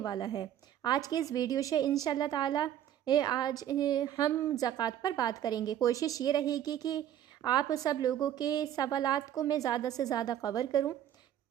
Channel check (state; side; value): quieter; left; 11.1 dB